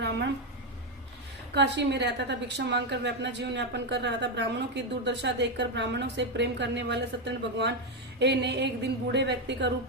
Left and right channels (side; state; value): both; normal; correlation 0.06